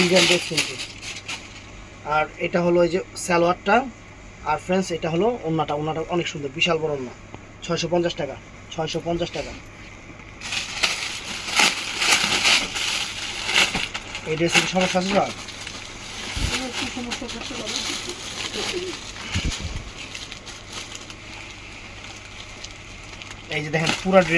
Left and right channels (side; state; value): both; identical; correlation 1.00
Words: ড্রেস কিন্তু। আর এটা হলো এই যে সালোয়ারটা। আর ফ্রেন্ডস, এটা হলো ওন্নাটা। ওন্নাটা অনেক সুন্দর, বিশাল বড় ওন্না। 650 টাকা। 650 টাকা। এই ড্রেসের সমস্যা আছে স্যার? এই যে দেখেন পুরো